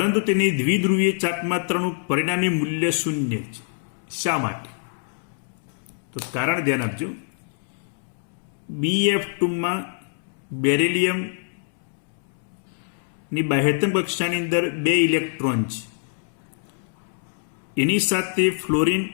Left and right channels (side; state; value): right; silent; 62 dB below the other